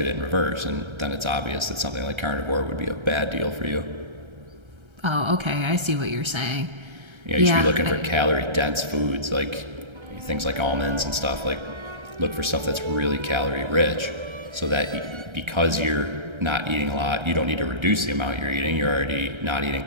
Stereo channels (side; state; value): left; late; 1.3 ms